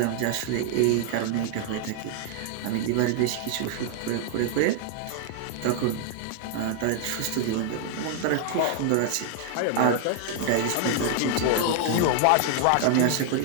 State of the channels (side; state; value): both; different; correlation 0.00